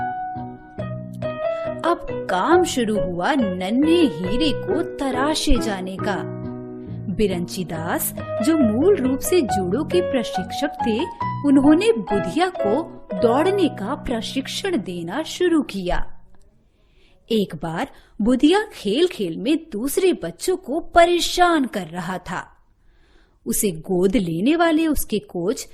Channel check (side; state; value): both; identical; correlation 1.00